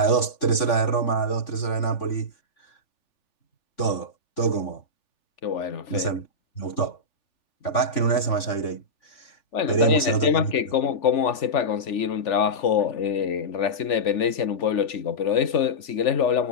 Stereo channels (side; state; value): right; late; 3.4 ms